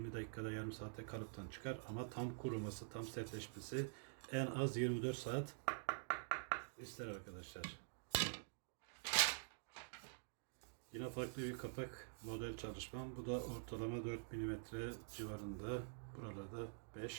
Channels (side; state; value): left; silent; digital silence